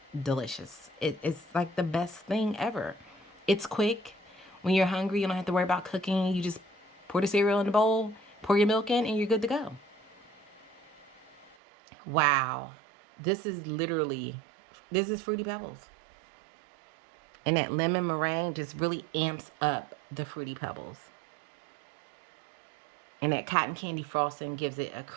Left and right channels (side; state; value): left; drops out; at 11.6 s